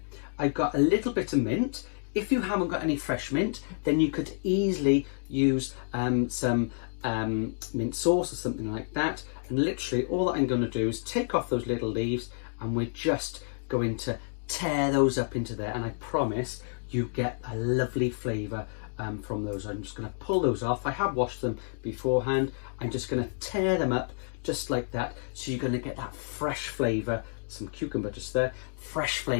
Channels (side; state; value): right; silent; digital silence